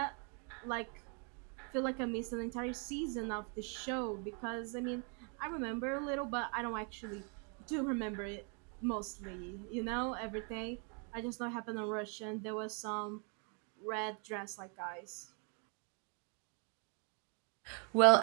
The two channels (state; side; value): quieter; left; 38.3 dB